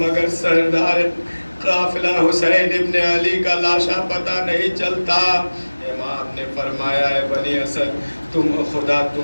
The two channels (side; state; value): both; inverted; correlation -1.00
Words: سردار قافلہ حسین ابن علی کا لاشا پتہ نہیں چلتا۔ امام نے فرمایا، ہے بنی اسد خدا